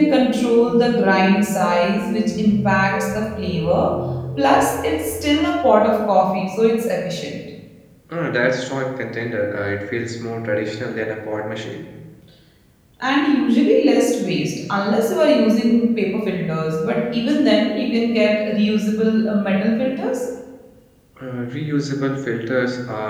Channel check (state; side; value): identical; both; correlation 1.00